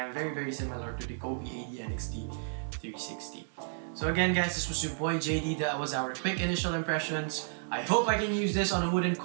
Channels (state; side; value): silent; left; digital silence